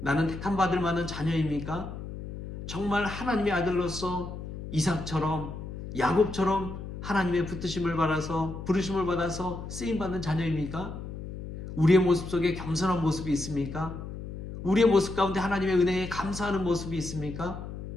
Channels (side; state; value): left; noise; hum, 9 dB below the sound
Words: 택함받을 만한 자녀입니까? 정말 하나님의 아들로서 이삭처럼, 야곱처럼 하나님의 붙드심을 받아서, 부르심을 받아서 쓰임받는 자녀입니까? 우리의 모습 속에 겸손한 모습이 있습니까? 우리의 모습 가운데 하나님의 은혜에 감사하는 모습이 있습니까?